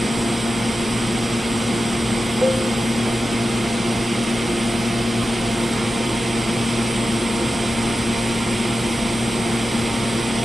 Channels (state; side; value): normal; both; correlation 0.92